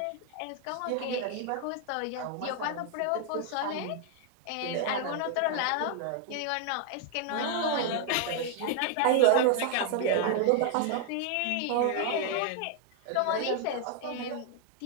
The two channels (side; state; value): both; different; correlation 0.00